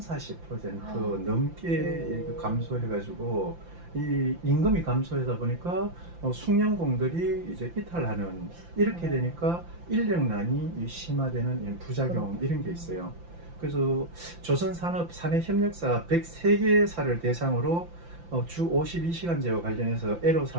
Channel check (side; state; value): left; late; 5.8 ms